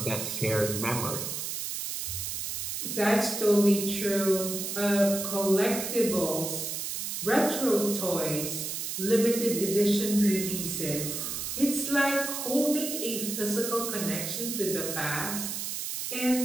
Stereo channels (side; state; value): right; noise; hiss, 4 dB below the sound